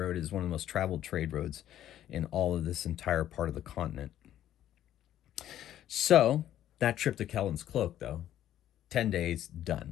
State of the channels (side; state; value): right; quieter; 11.9 dB